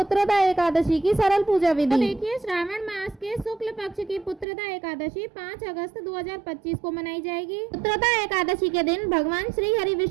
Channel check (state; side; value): drops out; left; at 4.5 s